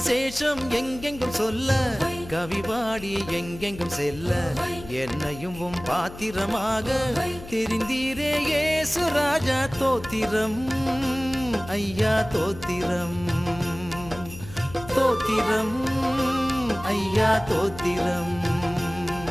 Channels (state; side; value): noise; left; hum, 15 dB below the sound